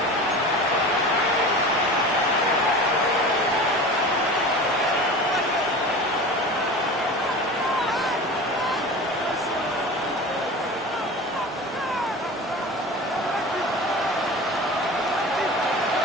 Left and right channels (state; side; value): normal; both; correlation 0.34